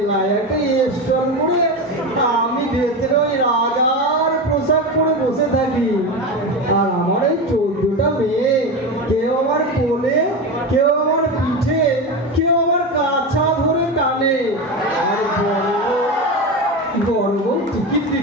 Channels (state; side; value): normal; both; correlation 0.21